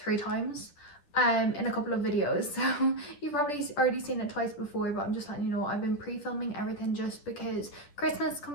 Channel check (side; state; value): right; late; 10 ms